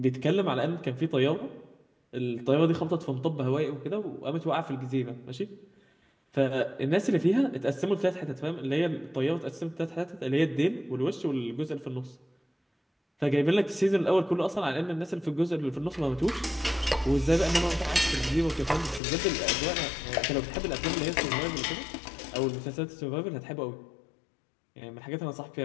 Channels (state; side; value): drops out; right; at 19.0 s